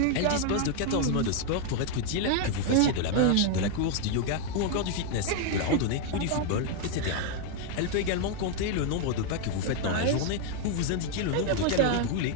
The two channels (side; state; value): both; different; correlation 0.01